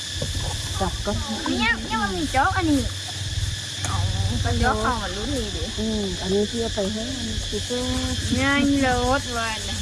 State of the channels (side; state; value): both; identical; correlation 1.00